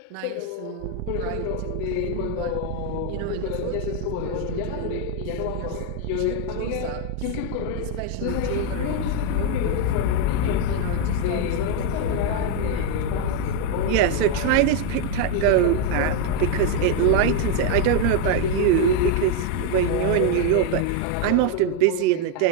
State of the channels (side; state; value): both; different; correlation 0.01